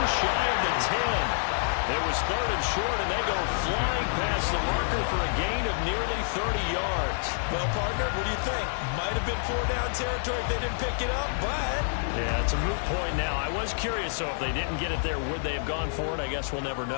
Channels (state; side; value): silent; right; digital silence